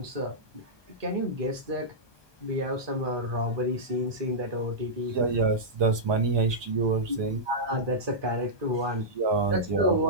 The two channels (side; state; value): left; late; 1.2 ms